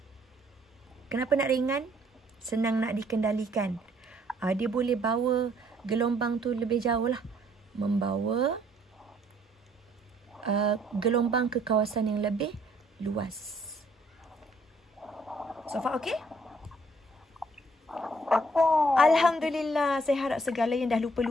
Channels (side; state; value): both; normal; correlation 0.65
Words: Kenapa nak ringan? Senang nak dikendalikan. Dia boleh bawa gelombang tu lebih jauh lah. Membawa gelombang ke kawasan yang lebih luas. So far okay? Alhamdulillah. Saya harap segala yang dah